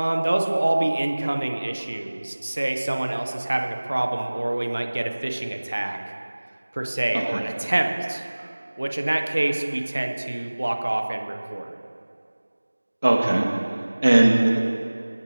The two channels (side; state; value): both; inverted; correlation -1.00